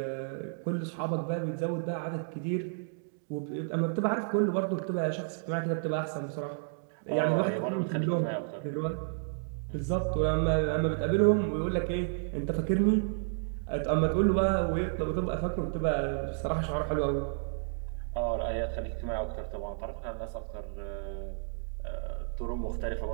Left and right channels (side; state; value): left; silent; digital silence